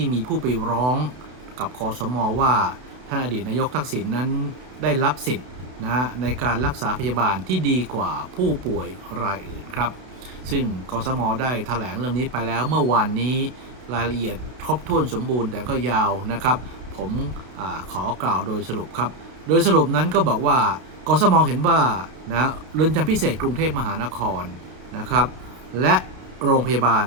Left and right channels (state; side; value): late; left; 31 ms